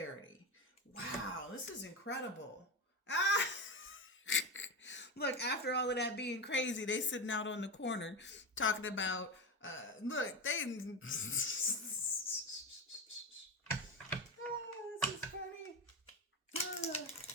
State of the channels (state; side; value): normal; both; correlation 0.19